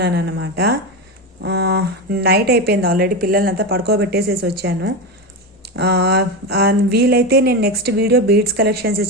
అన్నమాట. నైట్ అయిపోయింది ఆల్రెడీ. పిల్లలంతా పడుకోబెట్టేసేసి వచ్చాను. వీలైతే నేను నెక్స్ట్ వీడియో బీడ్స్ కలెక్షన్స్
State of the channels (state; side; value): normal; both; correlation 0.17